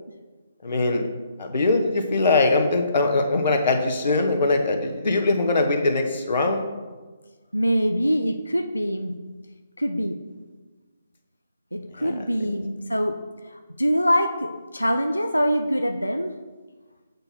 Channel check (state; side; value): inverted; both; correlation -0.77